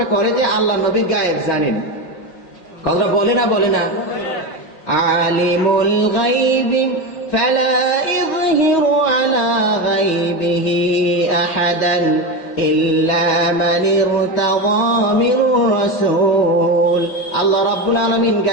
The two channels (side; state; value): right; late; 5.6 ms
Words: করে যে আল্লাহ নবী গায়েব জানেন। কথা বলে না বলে না? আলিমুল গায়বি ফালা ইযহিরু আলা গায়বিহি আহাদান ইল্লা মান ইরতাযা মির রাসূল। আল্লাহ রাব্বুল আলামিন